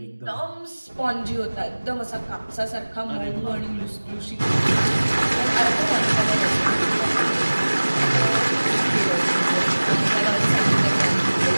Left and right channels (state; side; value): inverted; both; correlation -1.00